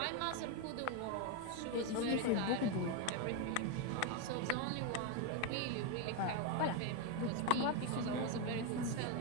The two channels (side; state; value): both; different; correlation 0.02